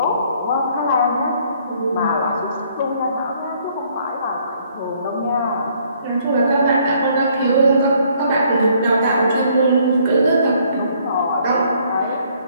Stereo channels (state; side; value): inverted; both; correlation -0.64